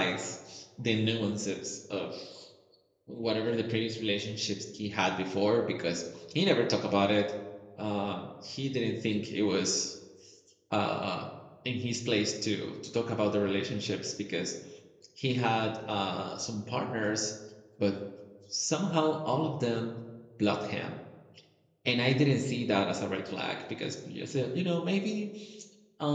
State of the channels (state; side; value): identical; both; correlation 1.00